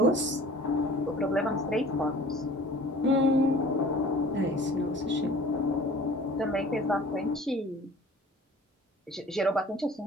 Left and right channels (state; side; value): normal; both; correlation 0.46